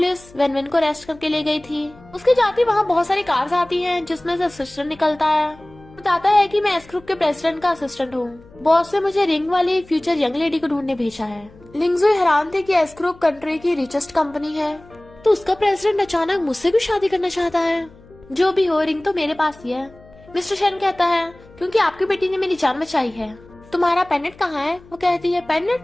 वैन को अरेस्ट करके ले गई थी। उसके जाते वहाँ बहुत सारी कार्स आती हैं जिसमें से असिस्टेंट निकलता है, बताता है कि मैं एस ग्रुप के प्रेसिडेंट का असिस्टेंट हूँ, बॉस ने मुझे रिंग वाली फ्यूचर यंग लेडी को ढूंढने भेजा है। लिंगजुई हैरान थे कि एस ग्रुप कंट्री की रिचेस्ट कंपनी है, तो उसका प्रेसिडेंट अचानक मुझसे भी शादी करना चाहता है। जो भी हो, रिंग तो मेरे पास ही है। मिस्टर शेन कहता है क्योंकि आपकी बेटी ने मेरी जान बचाई है। तुम्हारा पेंडेंट कहाँ है? वो कहती है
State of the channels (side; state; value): left; noise; hum, 24 dB below the sound